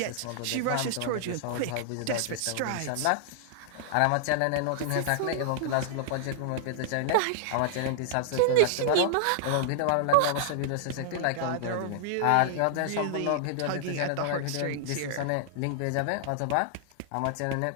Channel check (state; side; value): different; both; correlation -0.01